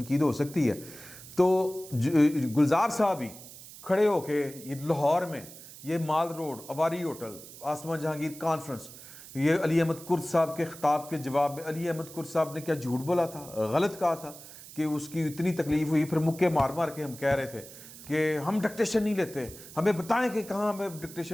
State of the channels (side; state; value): right; noise; hiss, 16 dB below the sound